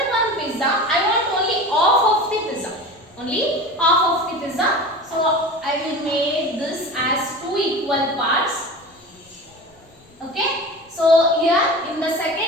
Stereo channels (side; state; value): left; noise; rumble, 30 dB below the sound